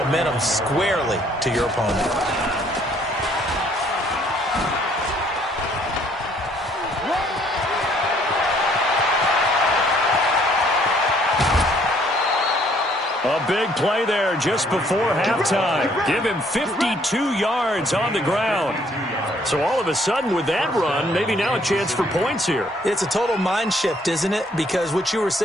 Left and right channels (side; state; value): both; normal; correlation 0.64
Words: squarely to your opponent. A big play there just before halftime. Give him 52 yards on the ground. So all of a sudden with that run, maybe now a chance for points here. It's a total mind shift, isn't it? Because what you were